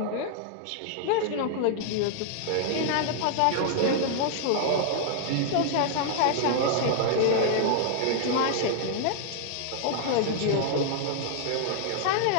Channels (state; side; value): different; both; correlation 0.00